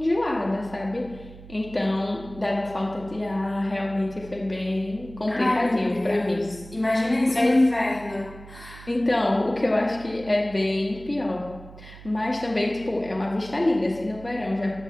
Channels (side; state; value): right; noise; hum, 17 dB below the sound